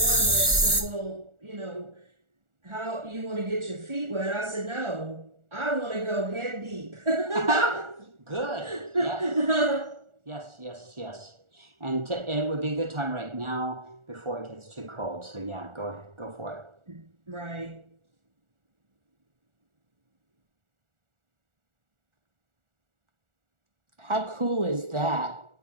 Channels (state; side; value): late; left; 1.4 ms